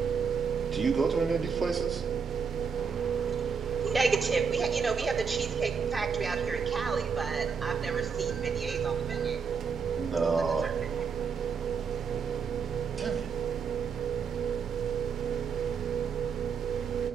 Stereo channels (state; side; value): quieter; left; 6.0 dB